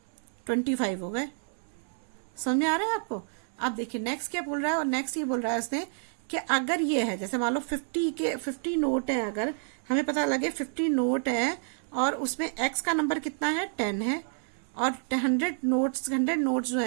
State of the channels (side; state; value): left; silent; 58 dB below the other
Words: 25 हो गए। समझ आ रहा है आपको? अब देखिए नेक्स्ट क्या बोल रहा है, और नेक्स्ट ये बोल रहा है उसने कि अगर ये है, जैसे मान लो 50 नोट है, अगर हमें पता लगे 50 नोट है और उसमें x का नंबर कितना है, 10 है, और 100 नोट्स जो